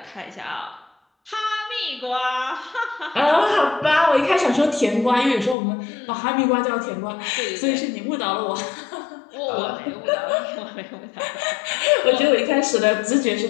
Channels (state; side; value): drops out; right; at 5.6 s